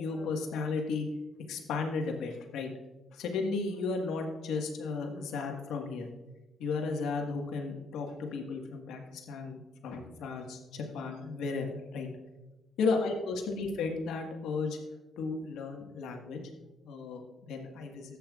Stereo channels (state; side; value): quieter; right; 3.7 dB